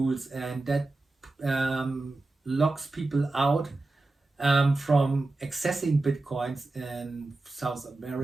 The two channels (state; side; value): quieter; left; 3.1 dB